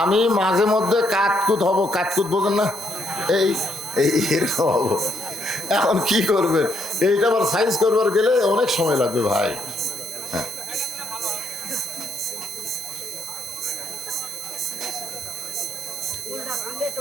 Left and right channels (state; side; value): normal; both; correlation 0.73